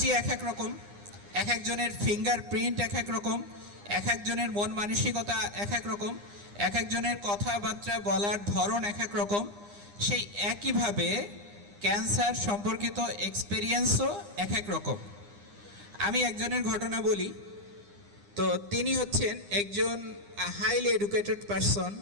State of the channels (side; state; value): left; late; 9.8 ms